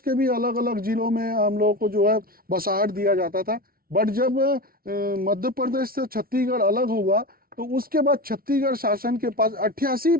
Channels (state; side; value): late; left; 0.43 ms